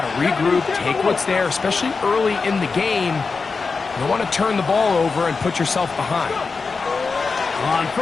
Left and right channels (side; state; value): right; quieter; 4.6 dB